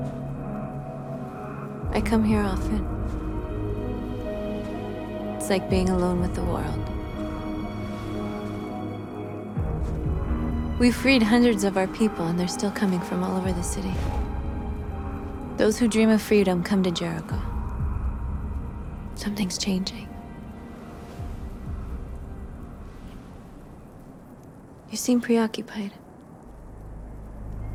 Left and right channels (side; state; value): both; identical; correlation 1.00